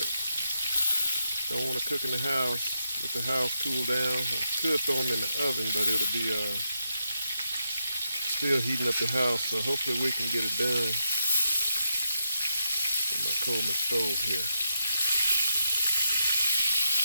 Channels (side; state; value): both; inverted; correlation -0.82